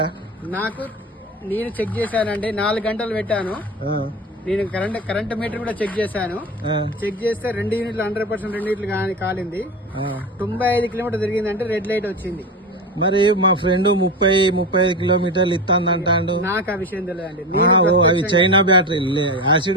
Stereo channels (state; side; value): normal; both; correlation 0.24